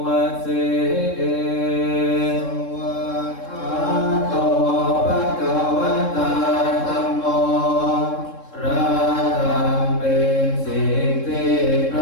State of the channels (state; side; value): late; right; 3.7 ms